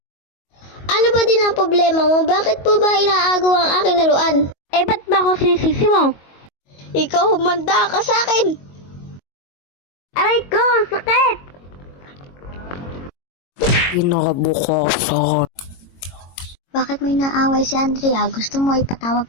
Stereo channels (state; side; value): late; right; 22 ms